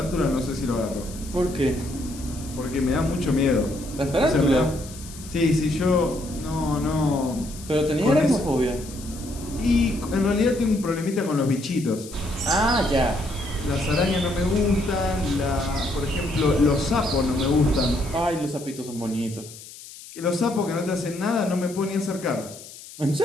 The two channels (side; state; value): left; noise; hiss, 16 dB below the sound